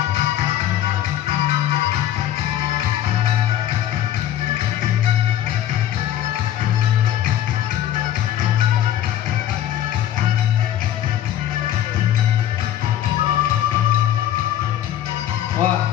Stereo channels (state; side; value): quieter; right; 11.7 dB